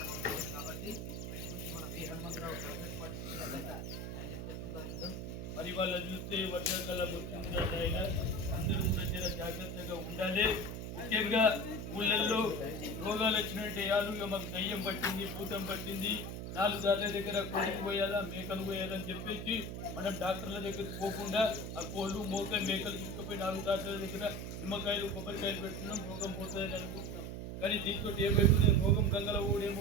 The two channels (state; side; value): noise; right; hum, 6 dB below the sound